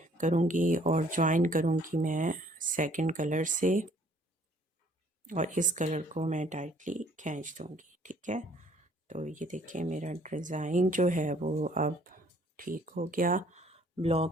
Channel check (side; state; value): both; normal; correlation 0.60